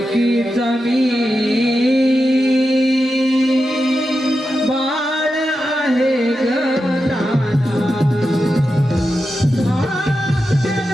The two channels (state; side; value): normal; both; correlation 0.89